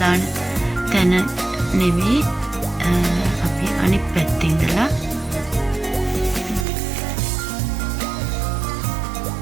දාන තැන නෙවෙයි, අපි අනිත් පැත්තේ ඉඳලා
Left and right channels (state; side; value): drops out; left; at 6.7 s